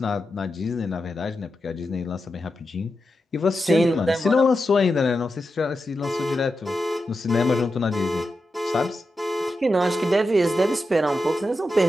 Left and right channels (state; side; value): normal; both; correlation 0.89